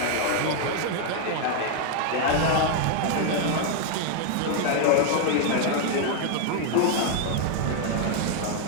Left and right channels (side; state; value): both; different; correlation 0.00